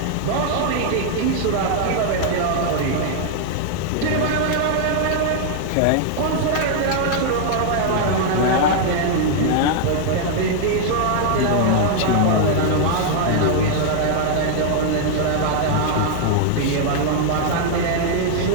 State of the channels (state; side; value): different; both; correlation -0.01